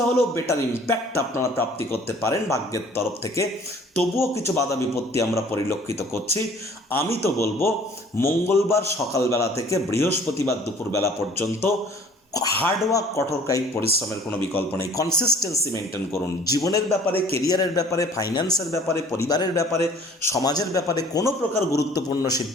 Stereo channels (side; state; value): both; normal; correlation 0.52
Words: হলেও বেটার ইম্প্যাক্ট আপনারা প্রাপ্তি করতে পারেন ভাগ্যের তরফ থেকে। তবুও কিছু বাধা বিপত্তি আমরা পরিলক্ষিত করছি। আমি তো বলবো মঙ্গলবার সকালবেলা থেকে বৃহস্পতিবার দুপুরবেলা পর্যন্ত হার্ডওয়ার্ক, কঠোর কায়িক পরিশ্রমের কোনো বিকল্প নেই। কনসিস্টেন্সি মেনটেন করুন। জীবনের ব্যাপারে, কেরিয়ারের ব্যাপারে, ফাইন্যান্সের ব্যাপারে, পরিবারের ব্যাপারে, সমাজের ব্যাপারে কোনো প্রকার গুরুত্বপূর্ণ